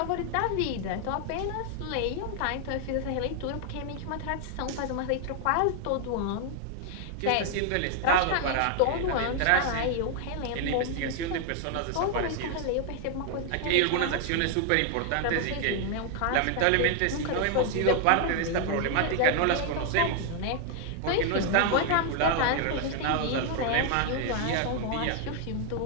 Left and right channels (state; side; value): different; both; correlation 0.00